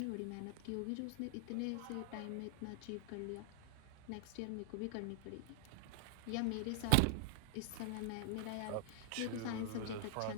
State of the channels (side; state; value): both; different; correlation -0.01